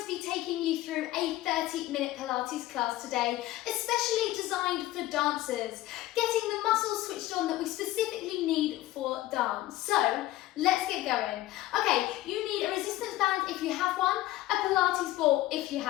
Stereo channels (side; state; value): right; quieter; 15.8 dB